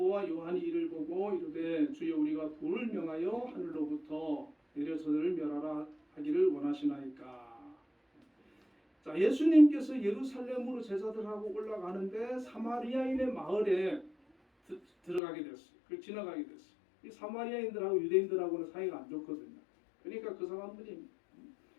요한이 이를 보고 이르되 주여 우리가 불을 명하여 하늘로부터 내려 저들을 멸하라 하기를 원하시나이까. 자, 예수님께서 예루살렘으로 제자들하고 올라가는데 사마리아인의 마을에 들어가게 됐어요. 그걸 지나가게 됐어요. 이 사마리아인들하고 유대인들하고는 사이가 안 좋거든요. 그러니까 그 사람들이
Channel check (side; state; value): right; drops out; at 15.2 s